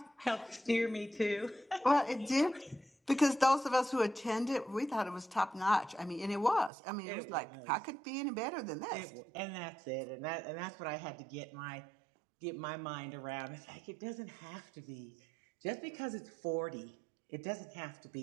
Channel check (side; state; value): left; drops out; at 6.7 s